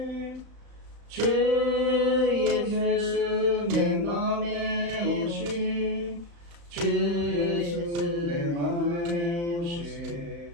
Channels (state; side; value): late; left; 35 ms